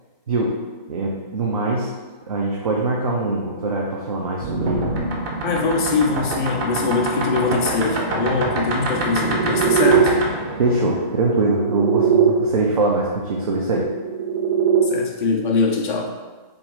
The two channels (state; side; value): inverted; both; correlation -0.32